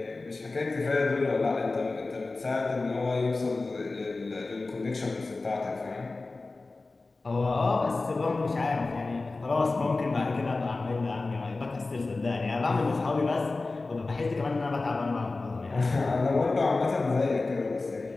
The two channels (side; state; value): right; quieter; 3.5 dB